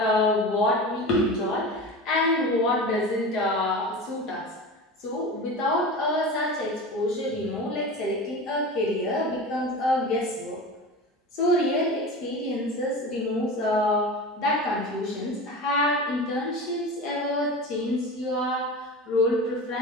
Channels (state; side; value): normal; both; correlation 0.30